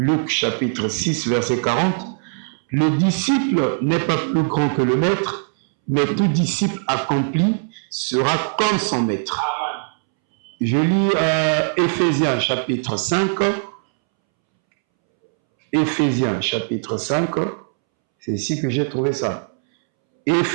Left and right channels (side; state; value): left; silent; 65 dB below the other